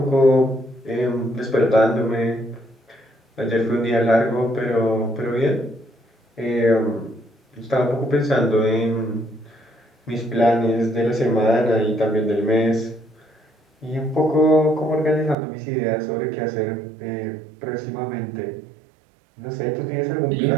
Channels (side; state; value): left; drops out; at 15.4 s